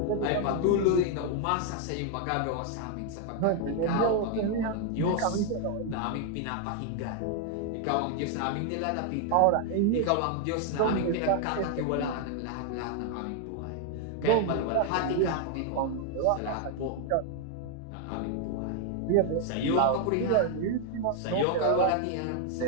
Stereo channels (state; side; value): different; both; correlation 0.00